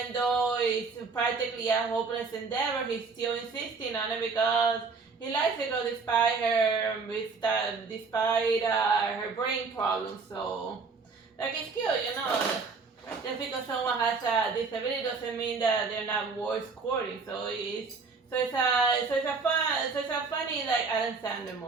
though it's practically a hopeless endeavor, he's still insisting on it because he likes the girl despite her brain problems. So, like, it's cute. Just because someone has a disability doesn't mean that they're not worth courting. It's a funny like Adam Sandler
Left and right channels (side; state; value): left; quieter; 4.6 dB